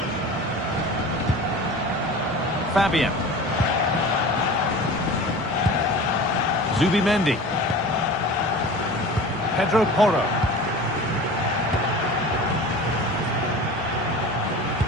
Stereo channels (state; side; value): normal; both; correlation 0.37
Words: Fabian. Zubimendi. Pedro Porro.